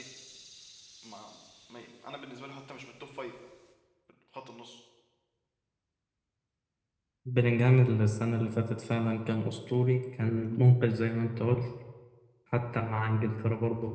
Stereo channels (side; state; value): both; identical; correlation 1.00